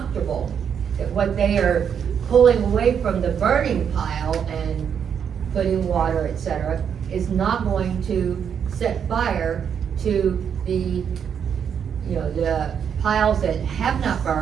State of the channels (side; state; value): left; quieter; 7.7 dB